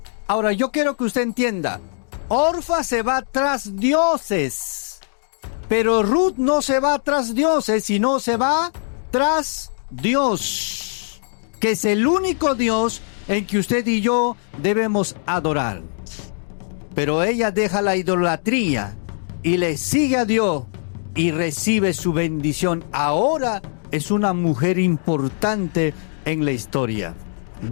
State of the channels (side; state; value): right; silent; digital silence